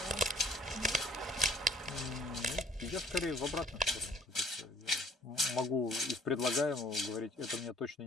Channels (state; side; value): normal; both; correlation 0.57